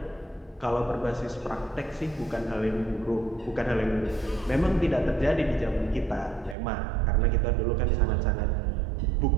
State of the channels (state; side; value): drops out; left; at 6.6 s